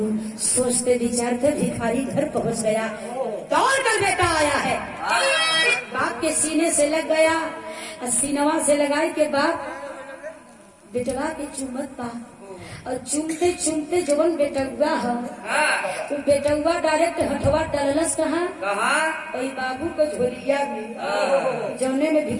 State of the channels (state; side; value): identical; both; correlation 1.00